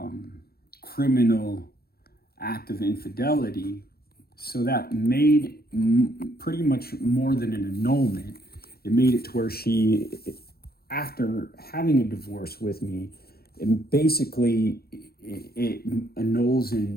criminal act of infidelity. So that made pretty much more than an annulment. It made it to where she, after having a divorce with me, it annuls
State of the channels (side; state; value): right; late; 0.45 ms